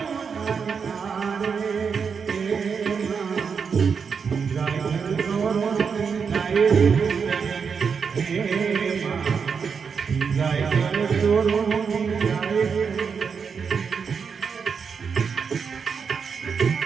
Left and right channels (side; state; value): left; quieter; 6.1 dB